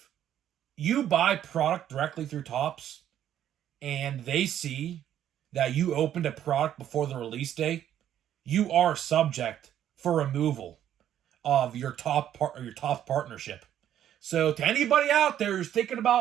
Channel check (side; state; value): left; quieter; 10.8 dB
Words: you buy product directly through Topps and they see that you opened a product before the release date, you are subject for removal of your top partnership. So to anybody out there who's thinking